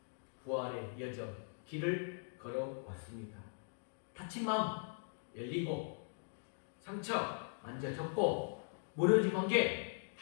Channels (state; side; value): silent; right; digital silence